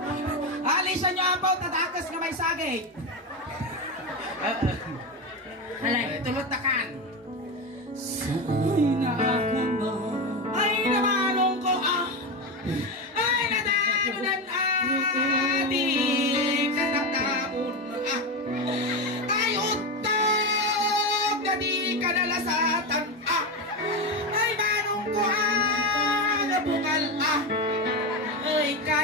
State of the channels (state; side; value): normal; both; correlation 0.16